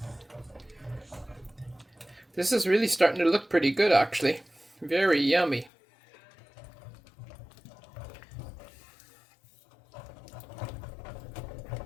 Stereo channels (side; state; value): right; drops out; at 5.7 s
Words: This is really starting to look pretty good, actually. Very yummy.